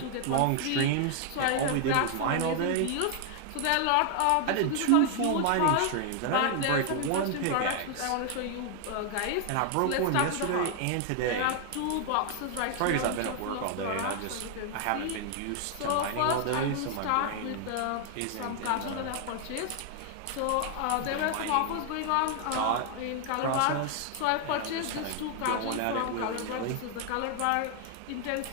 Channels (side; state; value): both; different; correlation 0.00